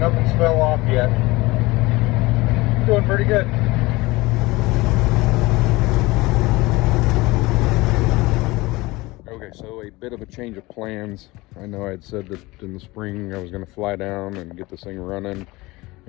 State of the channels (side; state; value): right; quieter; 21.4 dB